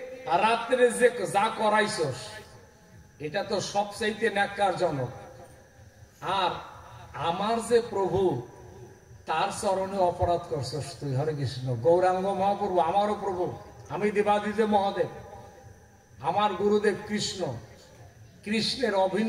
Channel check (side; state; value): both; identical; correlation 1.00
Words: আর রাত্রে যে যা করাইছস, এটা তো সবচাইতে ন্যাক্কারজনক। আর আমার যে প্রভু, তার চরণে অপরাধ করছস তুই, হরে কৃষ্ণ। গৌরাঙ্গ মহাপ্রভু আমারও প্রভু, আমি দেবাদিদেব মহাদেব, আমার গুরুদেব কৃষ্ণ। কৃষ্ণের